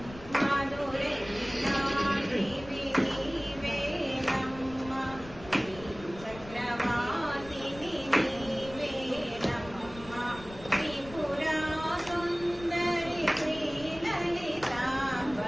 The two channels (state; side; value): noise; left; rumble, 17 dB below the sound